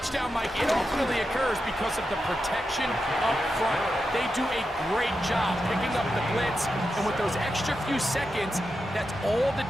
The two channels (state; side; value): normal; both; correlation 0.88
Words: Mike, it ultimately occurs because of the protection up front. They do a great job picking up the blitz, and with those extra few seconds, that's all the